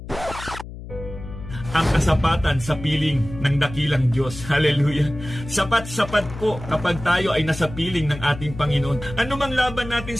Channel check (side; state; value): left; noise; hum, 12 dB below the sound